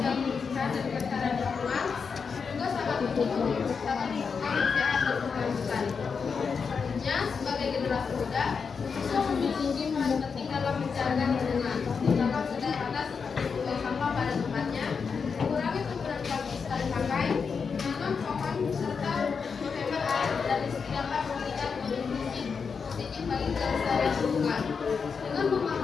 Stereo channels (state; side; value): quieter; right; 5.7 dB